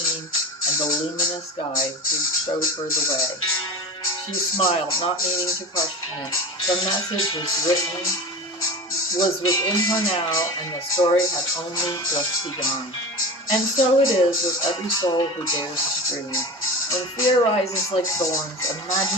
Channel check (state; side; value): normal; both; correlation 0.29